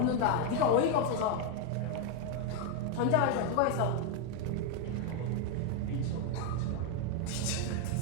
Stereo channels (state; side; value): different; both; correlation 0.00